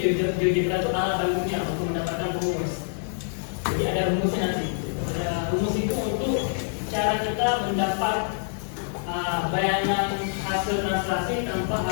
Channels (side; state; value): right; silent; 57 dB below the other